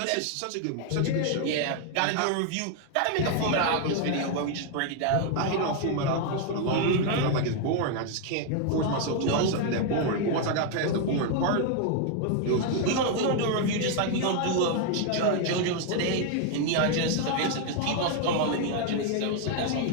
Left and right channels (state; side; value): different; both; correlation 0.00